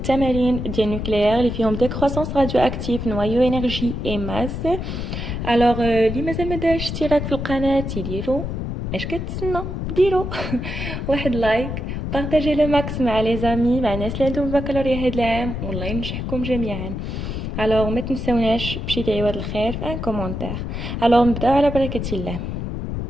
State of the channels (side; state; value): left; noise; rumble, 4 dB below the sound